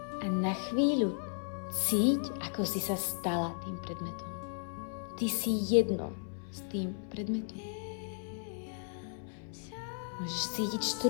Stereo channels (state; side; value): silent; right; 54 dB below the other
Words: A na chvíľu cíť, ako si sa stala tým predmetom. Ty si jedno s tým predmetom. Môžeš cítiť